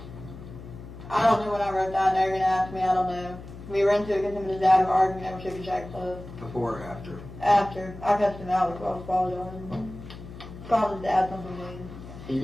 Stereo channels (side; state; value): left; noise; hum, 14 dB below the sound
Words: I don't know when I wrote that. Now you're going to ask me. I don't know. We were into it because him and his dad were arguing. Never took a check, so Before or after? after. I cussed him out before I was apologizing. Called his dad something mean. He